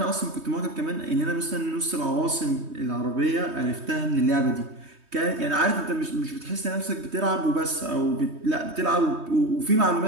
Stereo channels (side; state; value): left; late; 3.2 ms